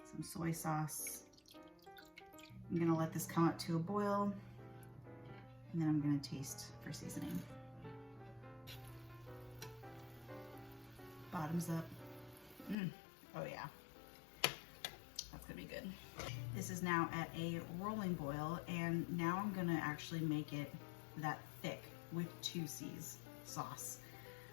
soy sauce. I'm gonna let this come up to a boil, and then I'm gonna taste for seasoning. Bottoms up. Oh yeah, that's gonna be good. This is now at a rolling boil, and now I'm gonna actually make it that thick with 2 C's sauce.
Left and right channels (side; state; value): right; drops out; at 12.8 s